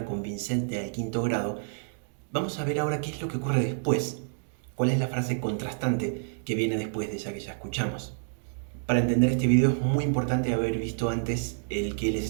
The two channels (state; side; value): silent; left; digital silence